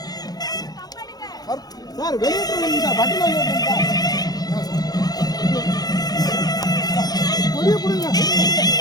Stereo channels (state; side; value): late; right; 0.19 ms